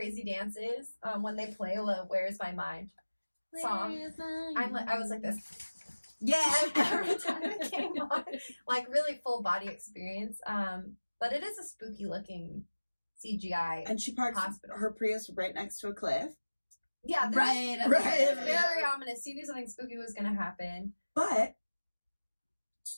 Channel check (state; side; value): inverted; both; correlation -1.00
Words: dance is, when they play Where's My Mind song, I was like this. Yeah. Every time it came on. Like, really full body experience. But it is a spooky looking CGI And she parks hospital. her Prius right next to a cliff. Yeah, Right. It's very ominous. She knew something spooky was going to happen. But,